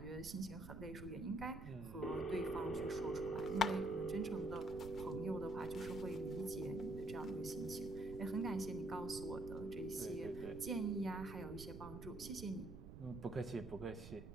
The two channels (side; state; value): right; noise; rumble, 10 dB below the sound